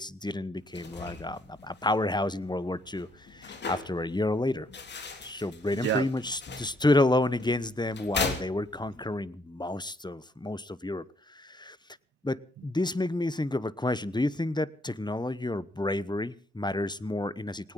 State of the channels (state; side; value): normal; both; correlation 0.69